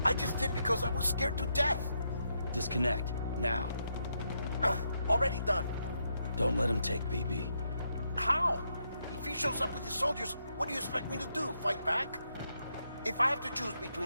I just did because I was scared to death. Disconnect, now. Already done. Don't let him take BB. How? If he shows up with his soldiers, what do you expect me to do? Fight back? If I have to choose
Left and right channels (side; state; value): both; inverted; correlation -0.80